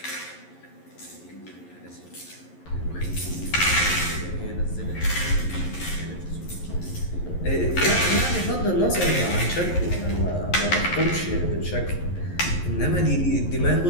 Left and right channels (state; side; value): late; right; 11 ms